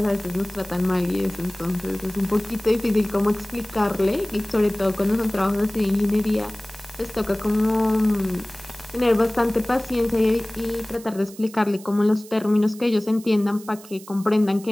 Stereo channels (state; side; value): noise; right; hiss, 19 dB below the sound